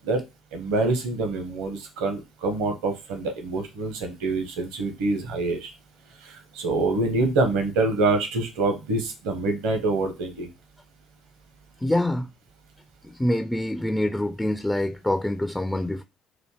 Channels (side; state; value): both; normal; correlation 0.54